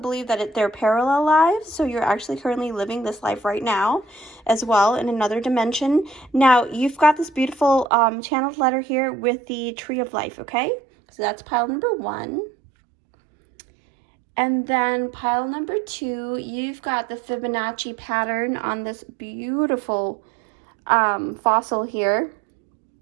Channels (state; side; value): drops out; left; at 7.9 s